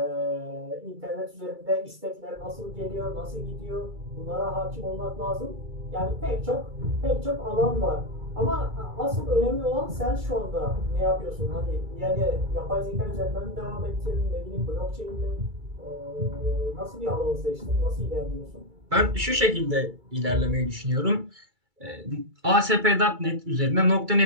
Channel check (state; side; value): late; left; 2.3 ms